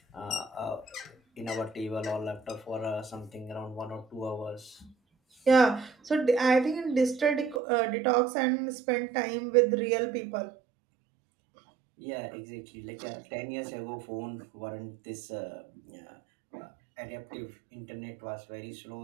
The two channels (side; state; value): left; drops out; at 7.6 s